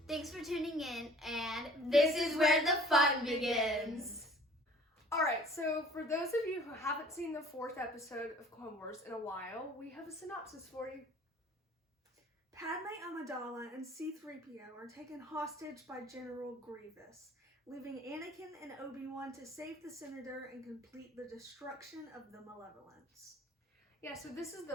Thanks for tuning in, and this is where the fun begins! Alright, so for those of you who haven't seen the 4th episode of Clone Wars in a while, we have a synopsis for you. Padme Amidala and C-3PO are taken hostage by General Grievous, leaving Anakin and Obi-Wan to save the Senator and complete the destruction of the Malevolence. Yeah, so this is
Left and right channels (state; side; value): normal; both; correlation 0.50